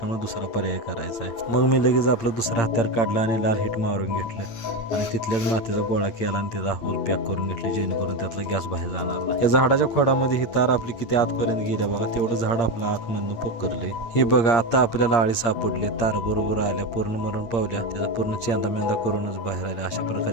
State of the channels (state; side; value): late; right; 8.7 ms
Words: दुसरा पर्याय करायचा आहे. मग मी लगेच आपलं दुसरं हत्यार काढलं आणि लाल हिट मारून घेतलं आणि तिथल्याच मातीचा गोळा केला आणि त्याचा होल पॅक करून घेतले, जेणेकरून त्यातला गॅस बाहेर जाणार नाही. या झाडाच्या खोडामध्ये ही तार आपली किती आतपर्यंत गेल्या बघा, तेवढं झाड आपलं आतमधून पोकरले. हे बघा आता आपल्याला आळी सापडले, तार बरोबर आल्या, पूर्ण मरून पावल्या, त्याचा पूर्ण चेंदा मेंदा करूनच बाहेर आल्या. अशा